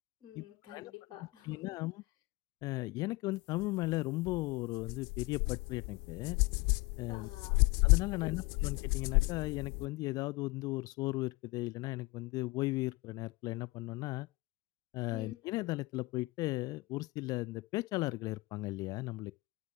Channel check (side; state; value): right; quieter; 22.8 dB